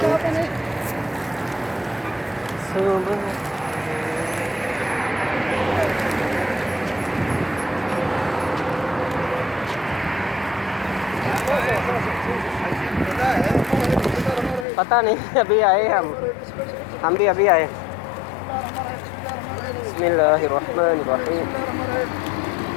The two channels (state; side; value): drops out; right; at 14.7 s